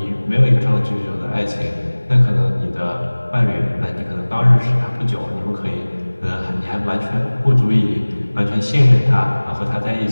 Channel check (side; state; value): both; inverted; correlation -1.00